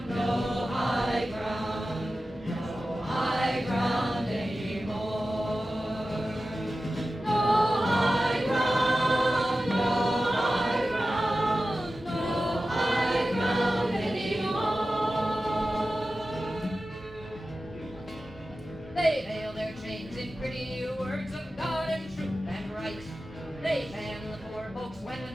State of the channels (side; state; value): both; normal; correlation 0.94